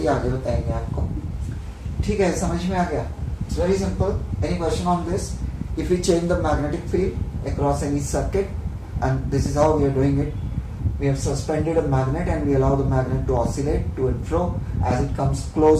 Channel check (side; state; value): both; identical; correlation 1.00